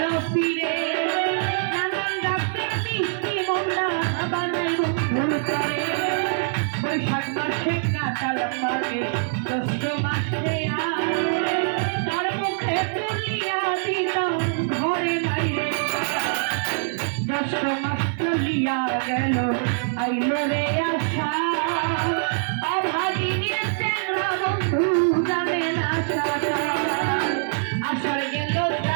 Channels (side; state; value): left; silent; 61 dB below the other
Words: ফিরে নানান যাত্রা মিষ্টি মনটা বানাই বন্ধুর করে বৈশাখ মাসে কাটাল মাগে জ্যৈষ্ঠ মাসে তার মুখে তুলিয়া দিতাম ঘরে বাইরে জ্যৈষ্ঠ মাস চলিয়া গেল আইল রে আশা অভাগিনীর চেংড়া বন্ধু জানে না আষাঢ় গেল